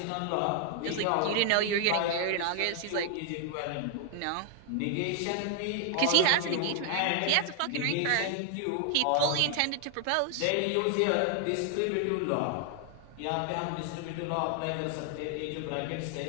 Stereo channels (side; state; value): both; different; correlation 0.00